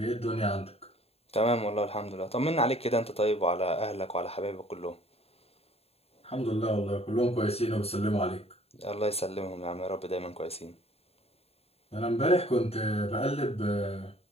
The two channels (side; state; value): right; late; 0.29 ms